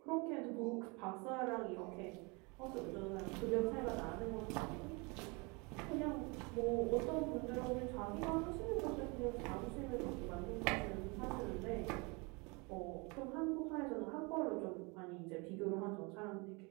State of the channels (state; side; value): quieter; left; 29.0 dB